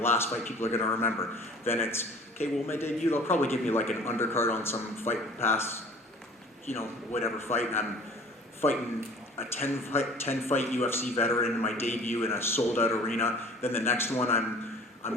fight people are gonna remember." Then it's okay. Well, my debut, they'll probably give me like an undercard on some Fight Pass, whatever fight, and I'm fighting a 10 fight UFC veteran in my debut in a sold out arena. Then the next one I'm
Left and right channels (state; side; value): normal; both; correlation 0.48